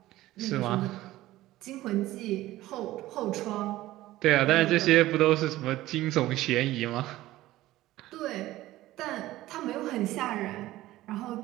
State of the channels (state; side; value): quieter; left; 16.2 dB